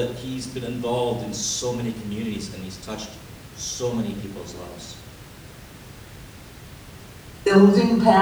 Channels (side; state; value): both; identical; correlation 1.00